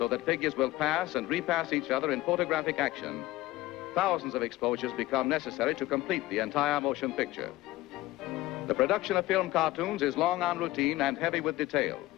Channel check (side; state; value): right; quieter; 17.2 dB